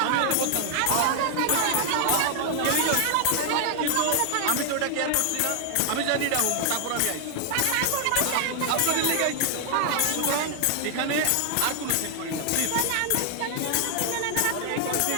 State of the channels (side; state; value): both; different; correlation 0.00